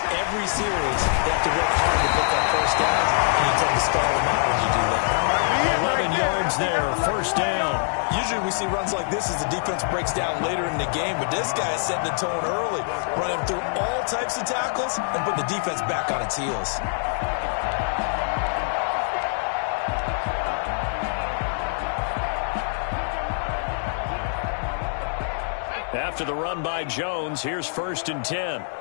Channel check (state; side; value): silent; right; 62 dB below the other